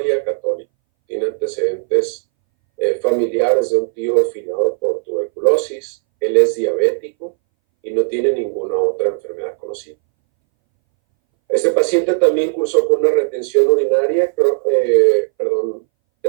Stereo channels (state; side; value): silent; left; 64 dB below the other